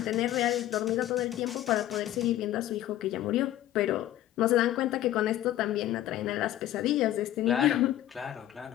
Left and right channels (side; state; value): right; quieter; 13.4 dB